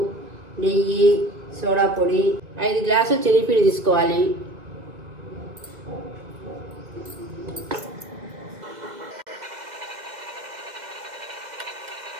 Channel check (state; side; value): late; left; 1.8 ms